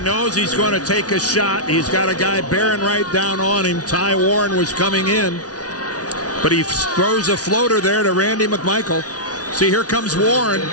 he's going to take a shot. He's got a guy bearing right down on him. Ty Warren was coming in, but he throws a floater there to Randy McMichael. See, here comes Warren.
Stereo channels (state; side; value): late; right; 0.68 ms